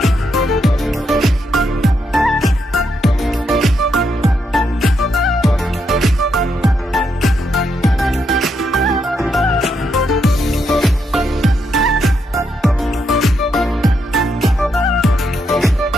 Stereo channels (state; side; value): normal; both; correlation 0.79